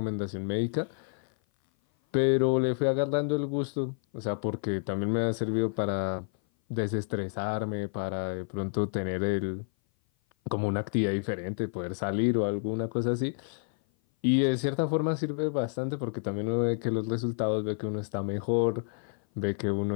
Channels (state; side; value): silent; right; 56 dB below the other